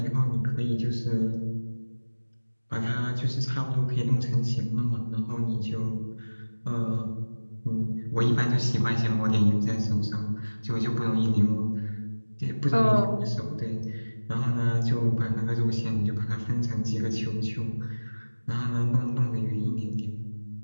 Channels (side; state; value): both; inverted; correlation -1.00